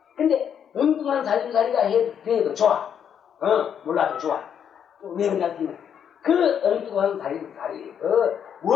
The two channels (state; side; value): quieter; right; 8.4 dB